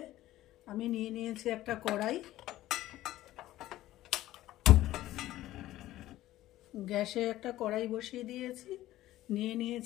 আমি নিয়ে নিয়েছি একটা কড়াই, গ্যাসে একটা কড়াই বসিয়ে দিয়েছি। নিয়ে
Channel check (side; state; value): right; quieter; 15.2 dB